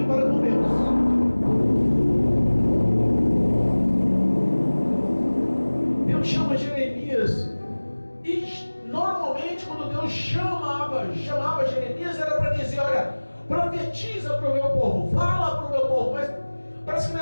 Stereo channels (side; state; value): both; inverted; correlation -1.00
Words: para com Deus. Deus chama Jeremias, e normalmente quando Deus chamava Jeremias era para dizer: olha, profetiza para o meu povo, fala para o meu povo. Mas parece que